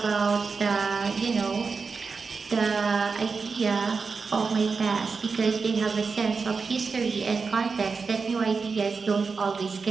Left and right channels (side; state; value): left; quieter; 4.8 dB